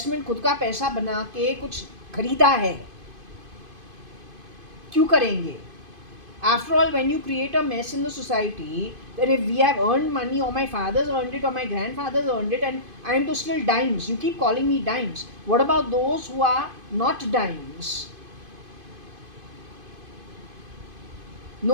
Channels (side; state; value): left; late; 2.5 ms